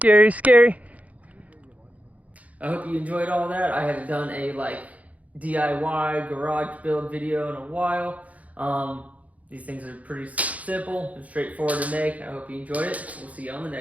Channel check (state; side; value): late; left; 0.070 ms